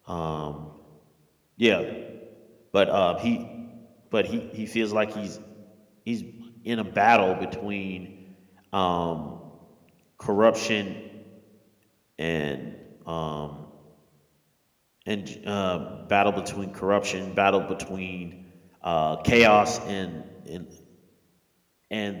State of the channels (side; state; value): both; identical; correlation 1.00